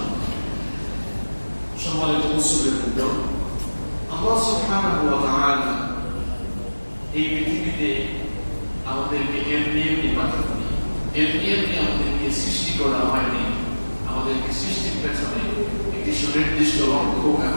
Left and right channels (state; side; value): inverted; both; correlation -1.00